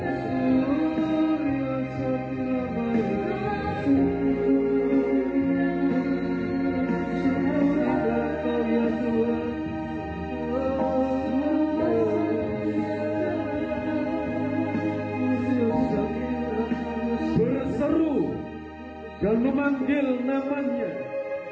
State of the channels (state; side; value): identical; both; correlation 1.00